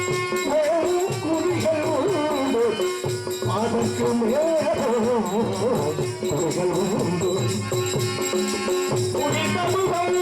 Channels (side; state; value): both; identical; correlation 1.00